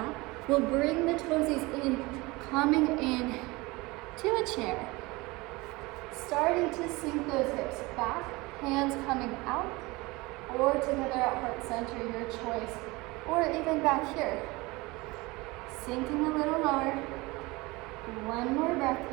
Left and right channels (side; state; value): left; quieter; 23.0 dB